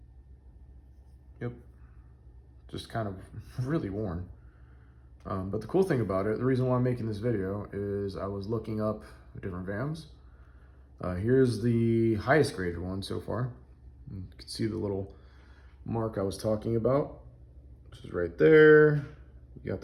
Yep. Just kind of really worn. But the cool thing about it, the reason why I'm making this video is I was looking up different VAMs. Here's the highest graded one so far. You can see the little mark I was talking about, which is right there. You got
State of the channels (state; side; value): identical; both; correlation 1.00